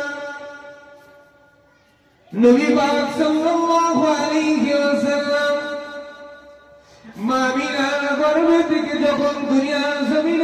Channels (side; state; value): both; identical; correlation 1.00